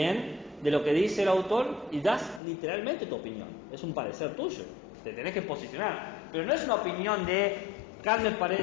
de lo que dice el autor y das literalmente tu opinión. Es un parecer tuyo, te tenés que posicionar. Pero no es una opinión de Kant me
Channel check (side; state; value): right; drops out; at 2.4 s